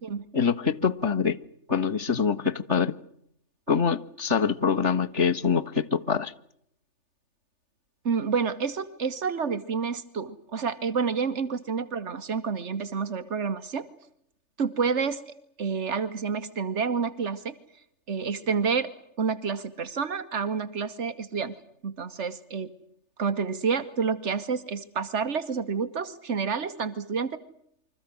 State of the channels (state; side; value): late; left; 3.4 ms